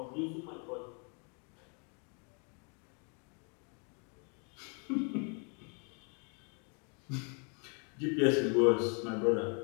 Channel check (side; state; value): right; quieter; 37.8 dB